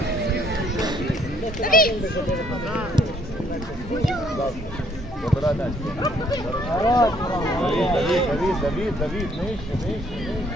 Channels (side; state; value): both; normal; correlation 0.65